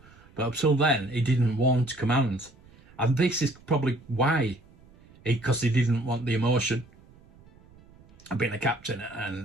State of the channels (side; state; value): right; noise; rumble, 26 dB below the sound